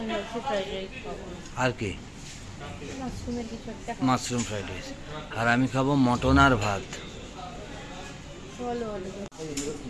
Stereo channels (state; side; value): identical; both; correlation 1.00